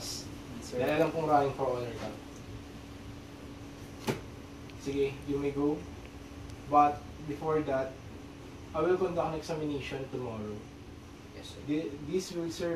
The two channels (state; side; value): identical; both; correlation 1.00